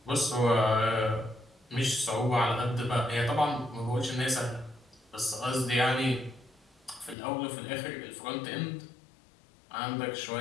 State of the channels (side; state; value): right; drops out; at 7.2 s